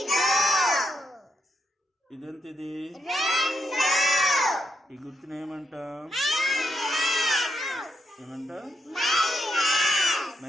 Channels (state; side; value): normal; both; correlation 0.80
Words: ఇదెంత? ఇది ఈ గుర్తుని ఏమంటాం?